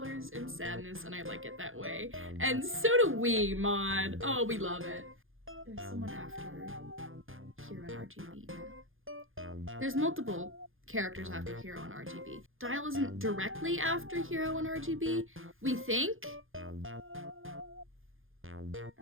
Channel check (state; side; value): late; left; 0.59 ms